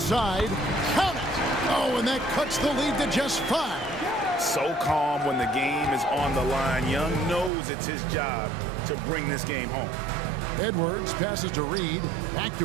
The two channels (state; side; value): drops out; left; at 7.5 s